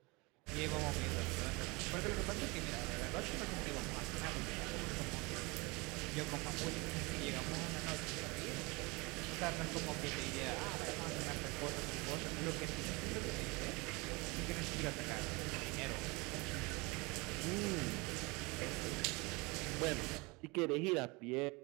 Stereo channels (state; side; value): quieter; left; 26.1 dB